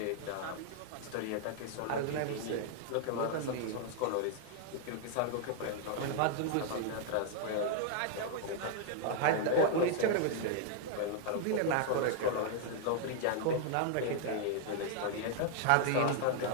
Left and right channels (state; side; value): different; both; correlation 0.00